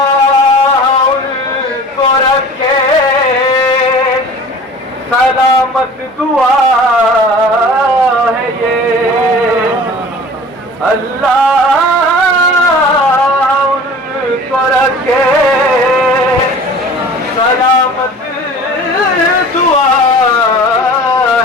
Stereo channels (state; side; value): normal; both; correlation 0.42